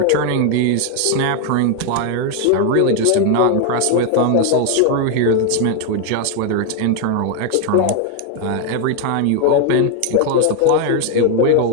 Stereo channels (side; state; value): both; different; correlation 0.01